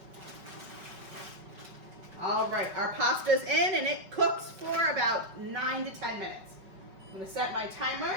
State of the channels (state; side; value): late; left; 5.3 ms